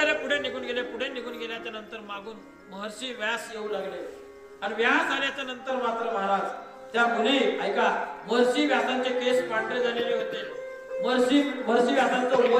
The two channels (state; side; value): identical; both; correlation 1.00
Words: पुढे निघून गेल्याच्या नंतर मागून महर्षी व्यास येऊ लागले. आणि व्यास आल्याच्या नंतर मात्र महाराज त्या मुली ऐका, महर्षी व्यासांचे केस पांढरे झालेले होते. महर्षी व्यासांचं